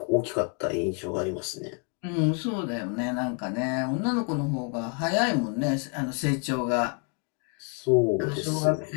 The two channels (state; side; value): quieter; right; 36.4 dB